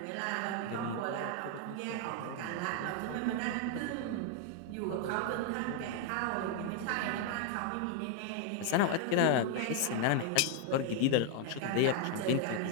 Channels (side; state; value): both; different; correlation 0.00